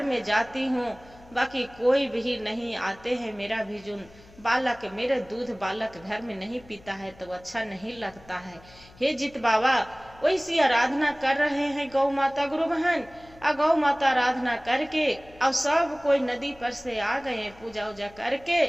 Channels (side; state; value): left; noise; hum, 24 dB below the sound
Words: में जाती हूँ, बाकी कोई भी नहीं आते हैं, मेरा भी जो बालक मेरे दूध बालक घर में नहीं पीता है तो अच्छा नहीं लगता है। हे जित बाबा वैसी आराधना कर रहे हैं गौ माता गुरु बहन। गौ माता आराधना करके अब सब कोई नदी पर से आ गए पूजा उजा करके।